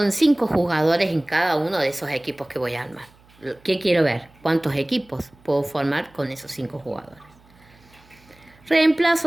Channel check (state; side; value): noise; right; hum, 29 dB below the sound